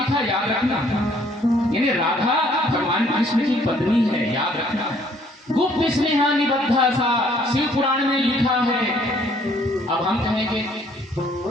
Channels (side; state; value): both; normal; correlation 0.62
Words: याद रखना, यानी राधा भगवान कृष्ण की पत्नी है, याद रखना। गुप्त स्नेहा निबद्धा सा शिव पुराण में लिखा है। अब हम कहेंगे